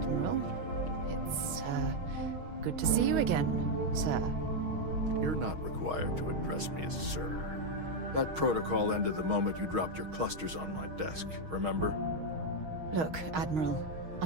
it's, good to see you again, sir. You're not required to address me as sir. That protocol ended the moment you dropped your clusters on my desk, remember? Look, Admiral,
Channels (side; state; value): left; late; 6.3 ms